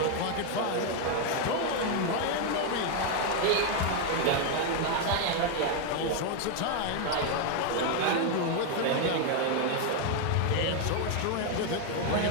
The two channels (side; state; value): both; different; correlation 0.01